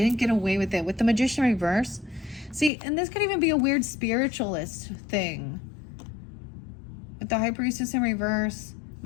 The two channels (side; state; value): right; drops out; at 2.7 s